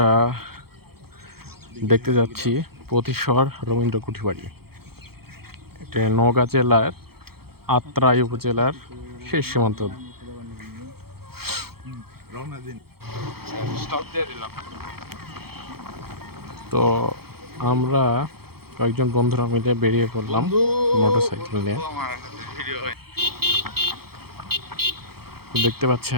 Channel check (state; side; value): late; left; 0.95 ms